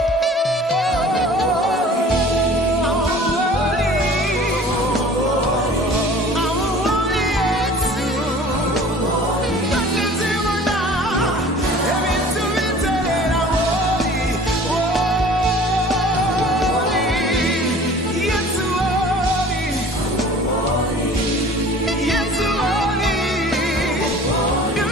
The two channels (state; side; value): normal; both; correlation 0.46